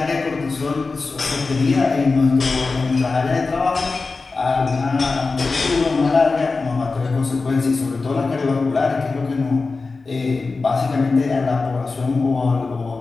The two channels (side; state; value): right; quieter; 4.0 dB